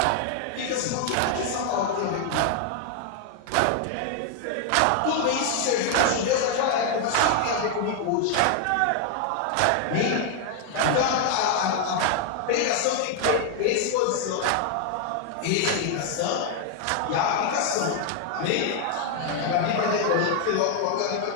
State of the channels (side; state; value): both; different; correlation 0.00